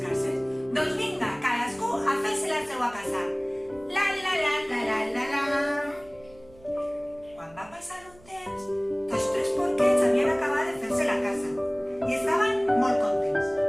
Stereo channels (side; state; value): right; noise; hum, 26 dB below the sound